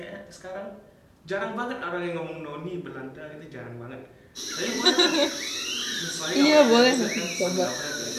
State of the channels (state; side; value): identical; both; correlation 1.00